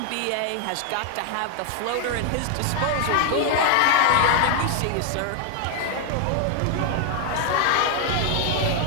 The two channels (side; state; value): both; different; correlation 0.00